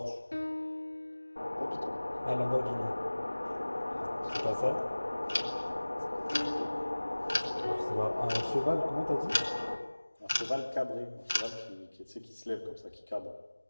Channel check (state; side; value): inverted; both; correlation -1.00